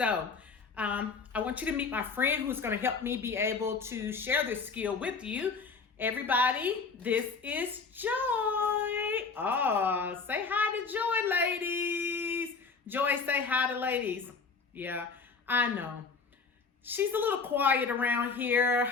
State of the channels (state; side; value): quieter; right; 4.9 dB